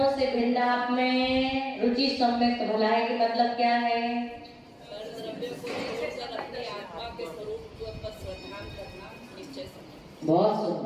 से भिन्न आप में रुचि सम्यक भलाई का मतलब क्या है? बहुत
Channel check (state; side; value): identical; both; correlation 1.00